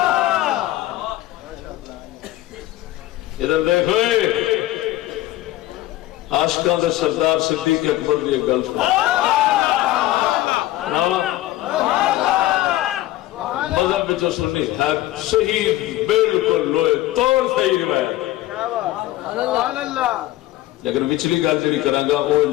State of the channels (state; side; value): quieter; right; 15.7 dB